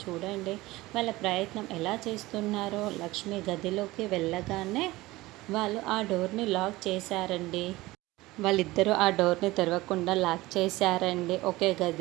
చూడండి వాళ్ళ ప్రయత్నం ఎలా చేస్తున్నారో. లక్ష్మి గదిలోకి వెళ్ళగానే వాళ్ళు ఆ డోర్ని లాక్ చేశారండి. వాళ్ళిద్దరూ ఆ డోర్ని తెరవకుండా లాక్ చేశారండి. ఒకే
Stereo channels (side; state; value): left; quieter; 19.3 dB